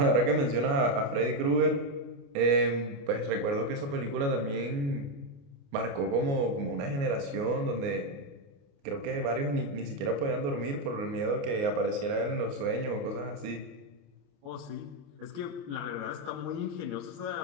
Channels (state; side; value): late; left; 29 ms